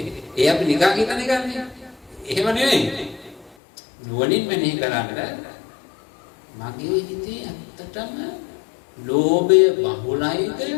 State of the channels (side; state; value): right; drops out; at 3.6 s